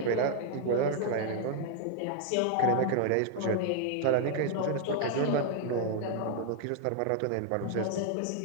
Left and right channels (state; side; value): different; both; correlation 0.00